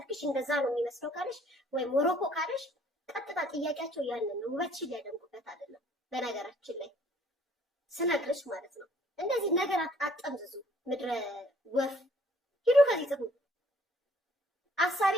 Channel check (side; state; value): both; normal; correlation 0.59